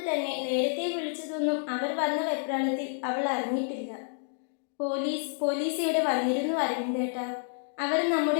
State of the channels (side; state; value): right; silent; digital silence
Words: തന്നെ നേരത്തെ വിളിച്ചതൊന്നും അവർ വന്ന വെപ്രാളത്തിൽ അവൾ അറിഞ്ഞിട്ടില്ല. പോലീസ് ഇവിടെ വന്നിരുന്നു അരവിന്ദേട്ടാ. അവർ